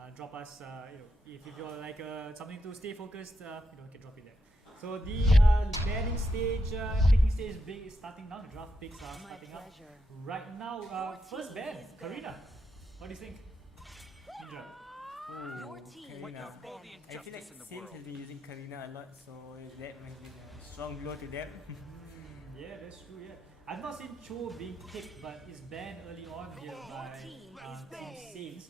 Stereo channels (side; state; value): both; normal; correlation 0.83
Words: Drop us, if you're like something to stay focused, you can drop it there. So the banning stage, picking stage is starting now. The draft picks are starting up right now. First ban, Karina. What do you think, Indra? Your team Karina. I feel like Saints has been using Karina a lot, so that might be a strong blow to them. Yeah, that's true. Yeah, I've not seen Cho being picked, but is banned early on here by Saints.